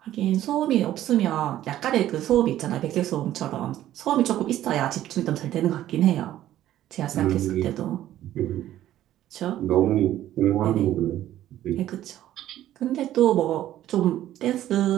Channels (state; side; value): quieter; left; 13.0 dB